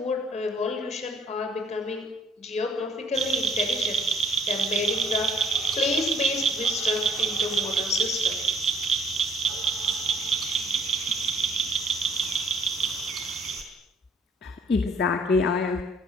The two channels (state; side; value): normal; both; correlation 0.60